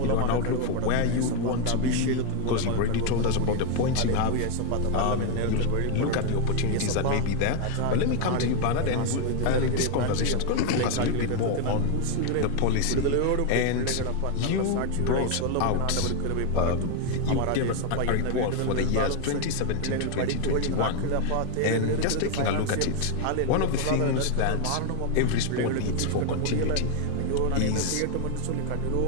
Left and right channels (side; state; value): both; different; correlation 0.01